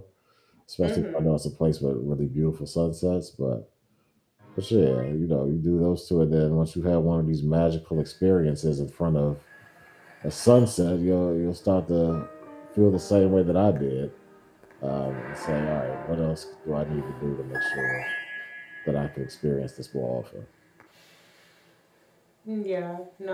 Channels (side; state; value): both; identical; correlation 1.00